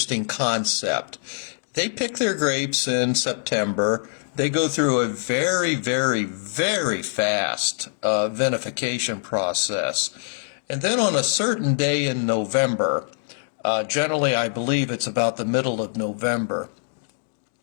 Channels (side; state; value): right; silent; digital silence